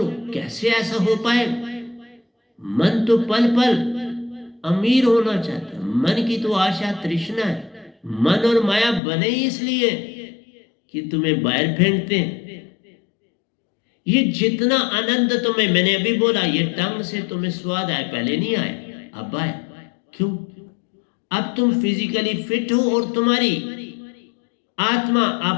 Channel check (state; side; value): drops out; right; at 9.0 s